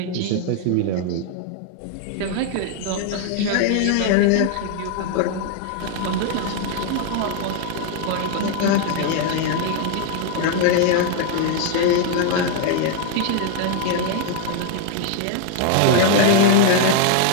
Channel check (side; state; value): both; different; correlation 0.00